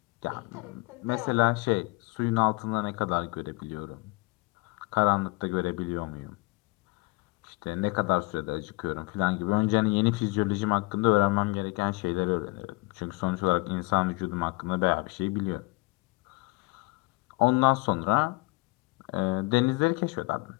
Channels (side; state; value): right; quieter; 25.7 dB